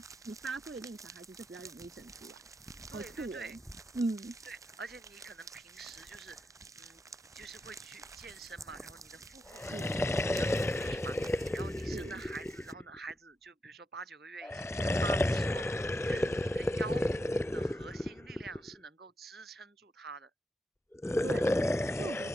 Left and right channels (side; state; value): both; normal; correlation 0.86